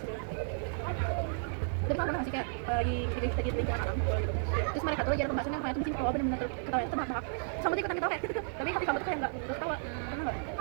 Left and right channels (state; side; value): silent; left; digital silence